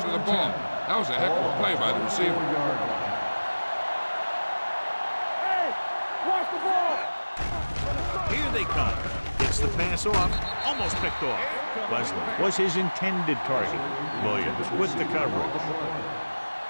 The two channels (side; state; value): both; inverted; correlation -1.00